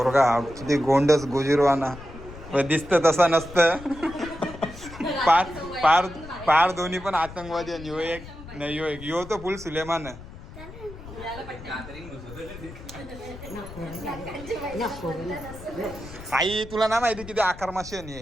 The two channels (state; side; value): noise; left; rumble, 15 dB below the sound